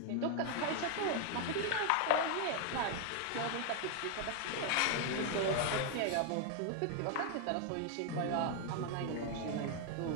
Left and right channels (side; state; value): both; different; correlation 0.01